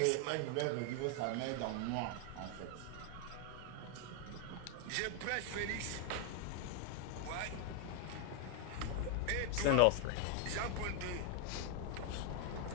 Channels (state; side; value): different; both; correlation 0.00